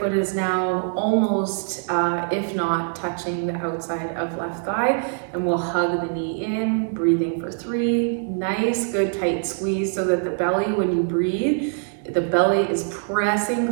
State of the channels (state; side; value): silent; left; 57 dB below the other